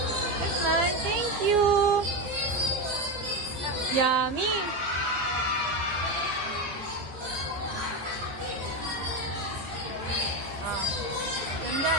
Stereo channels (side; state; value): left; late; 15 ms